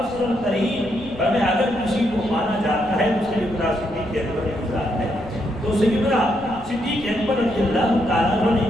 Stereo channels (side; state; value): left; noise; rumble, 17 dB below the sound